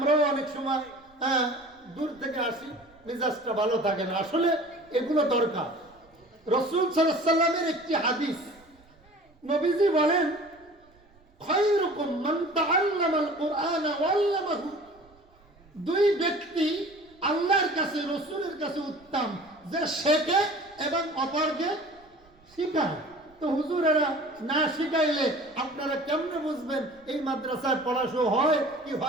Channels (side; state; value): right; noise; rumble, 30 dB below the sound